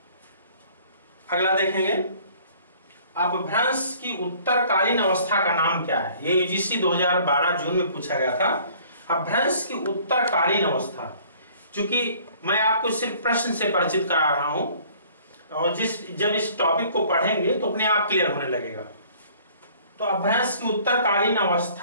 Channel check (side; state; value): both; inverted; correlation -0.55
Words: अगला देखेंगे, अपभ्रंश की उत्तरकालीन अवस्था का नाम क्या है? ये यूजीसी 2012 जून में पूछा गया था। अपभ्रंश की उत्तरकालीन अवस्था, चूंकि मैं आपको सिर्फ प्रश्न से परिचित करा रहा हूं, और जब इस टॉपिक को पढ़ेंगे तो अपने आप क्लियर होने लगेगा। तो अपभ्रंश की उत्तरकालीन